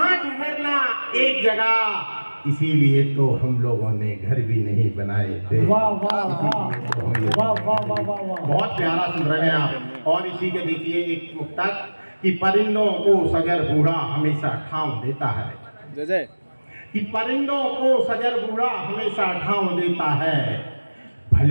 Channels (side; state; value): both; inverted; correlation -1.00